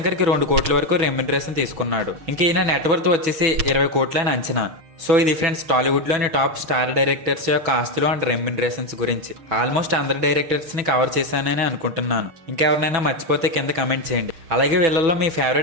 కి 2 కోట్ల వరకు రెమ్యునరేషన్ తీసుకున్నాడు. ఇంక ఈయన నెట్వర్త్ వచ్చేసి 20 కోట్లని అంచనా. సో ఇది ఫ్రెండ్స్ టాలీవుడ్ లోని టాప్ స్టార్ డైరెక్టర్స్ యొక్క ఆస్తులు అండ్ రెమ్యునరేషన్స్ గురించి. ఆల్మోస్ట్ అందరు డైరెక్టర్స్ ని కవర్ చేశానని అనుకుంటున్నాను. ఇంకెవరినైనా మర్చిపోతే కింద కమెంట్ చేయండి. అలాగే వీళ్ళల్లో మీ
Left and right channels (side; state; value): left; late; 6.1 ms